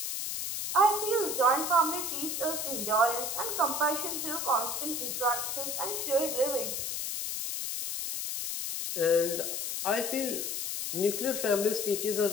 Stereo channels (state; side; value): noise; left; hiss, 3 dB below the sound